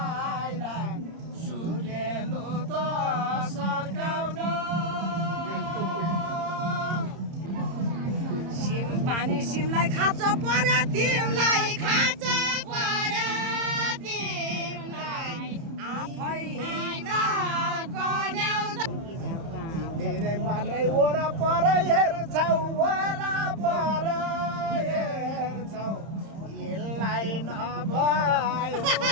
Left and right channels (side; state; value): left; late; 30 ms